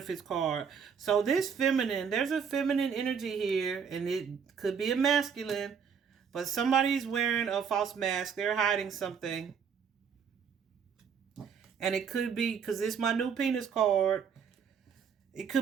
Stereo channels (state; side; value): quieter; left; 6.8 dB